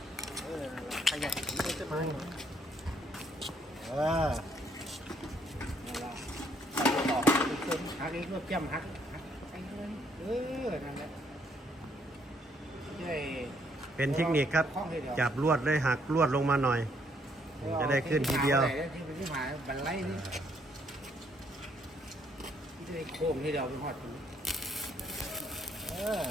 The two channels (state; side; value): normal; both; correlation 0.69